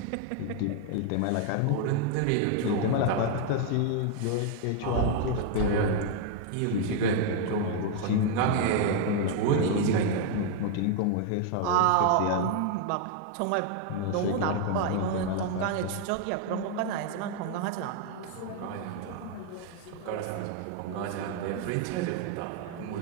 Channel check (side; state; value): both; different; correlation 0.00